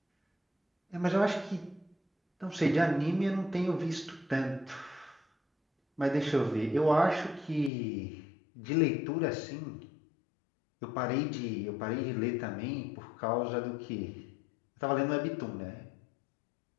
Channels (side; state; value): right; drops out; at 7.7 s